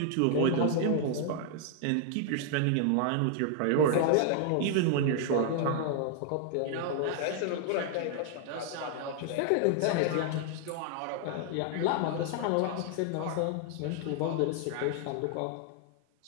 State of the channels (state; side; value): different; both; correlation 0.00